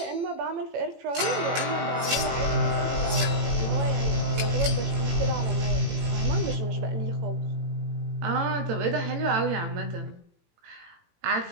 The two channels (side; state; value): left; late; 18 ms